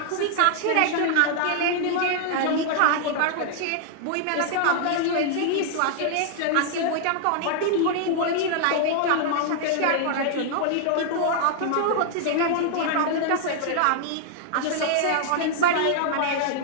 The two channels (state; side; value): different; both; correlation -0.01